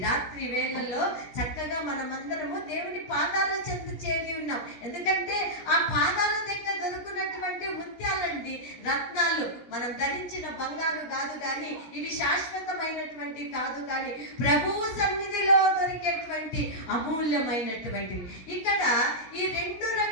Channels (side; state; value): right; late; 16 ms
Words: రాత్రి వేళల్లో చక్కగా మనమందరము దేవుని పాదాల చెంత చేరి ఉన్నాం. ఎందుకంటే ఆ పాదాల దగ్గర దొరుకున్నటువంటి ముత్యాలండి, రత్నాలు. మనం ధరించిన బంగారు కాదు కానీ, ఇవి శాశ్వతమైనటువంటి కాదు కానీ, ప్రభువు సన్నిధిలో దొరికేటువంటి అమూల్యమైనటువంటివి. ఇక్కడ ఈ రెండు